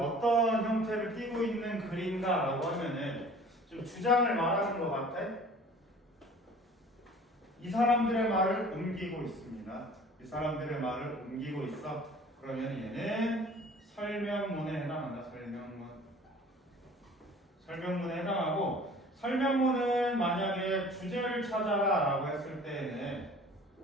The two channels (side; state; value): both; normal; correlation 0.47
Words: 형태를 띠고 있는 글인가라고 하면은 좀 주장을 말하는 것 같아. 이 사람들의 말을 옮기고 있습니다. 이 사람들의 말을 옮기고 있어. 그러면 얘는 설명문에 해당한다. 설명문에 해당하고, 설명문은 만약에 주제를 찾아라 라고 했을 때에는